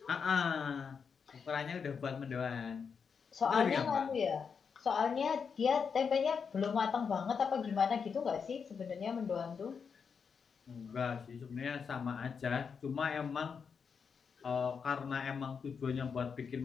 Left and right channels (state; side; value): quieter; right; 6.1 dB